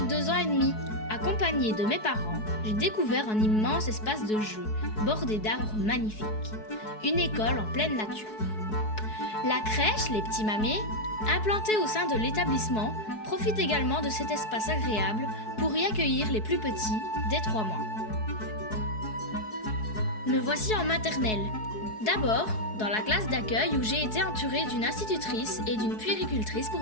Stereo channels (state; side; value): late; right; 4.7 ms